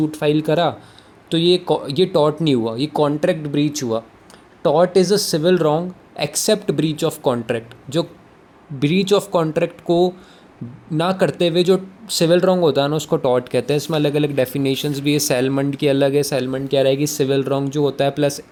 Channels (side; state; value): both; identical; correlation 1.00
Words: फाइल करा, तो ये टॉट नहीं हुआ, ये कॉन्ट्रैक्ट ब्रीच हुआ. टॉट is a civil wrong except breach of contract. जो ब्रीच ऑफ कॉन्ट्रैक्ट को ना करते हुए जो सिविल रॉन्ग होता है ना, उसको टॉट कहते हैं. इसमें अलग अलग डेफिनेशंस भी है. सेलमंड की अलग है. सेलमंड क्या रहेगी, सिविल रॉन्ग जो होता है प्लस